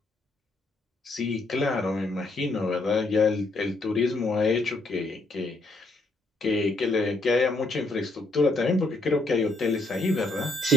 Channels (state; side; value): normal; both; correlation 0.74